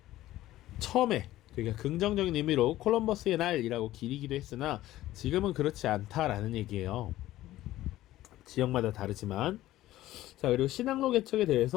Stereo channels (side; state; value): right; quieter; 15.1 dB